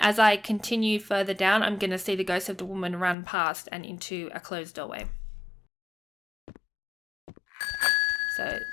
as I continue further down, I'm going to see the ghost of the woman run past and into a closed doorway. So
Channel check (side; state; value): right; drops out; at 3.2 s